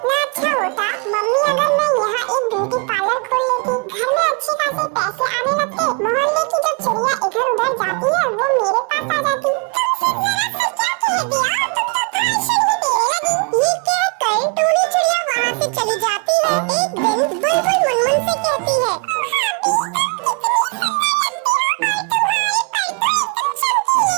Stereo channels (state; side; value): quieter; left; 34.2 dB